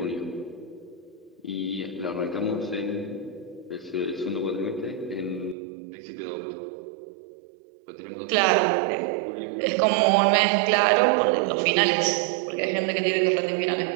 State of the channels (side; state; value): left; drops out; at 5.6 s